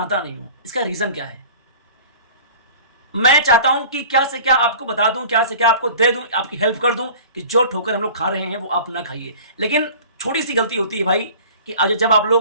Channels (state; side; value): inverted; both; correlation -0.43